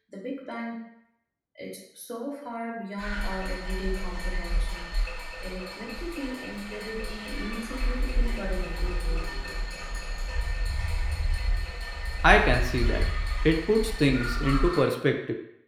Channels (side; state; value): both; identical; correlation 1.00